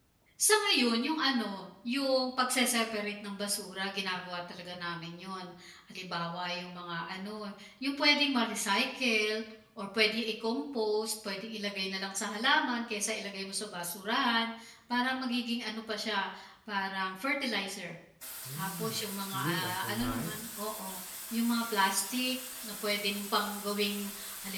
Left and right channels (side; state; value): both; identical; correlation 1.00